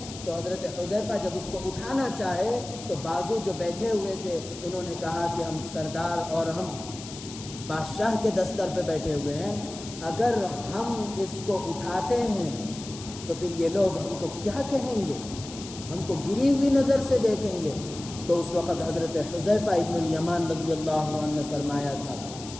تو حضرت حذیفہ جب اس کو اٹھانا چاہے تو بازو جو بیٹھے ہوئے تھے انہوں نے کہا کہ ہم سردار اور ہم بادشاہ کے دستر پہ بیٹھے ہوئے ہیں، اگر ہم اس کو اٹھاتے ہیں تو پھر یہ لوگ ہم کو کیا کہیں گے، ہم کو گری ہوئی نظر سے دیکھیں گے۔ تو اس وقت حضرت حذیفہ ابن الیمان رضی اللہ عنہ نے فرمایا تھا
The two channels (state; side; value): noise; left; hiss, 13 dB below the sound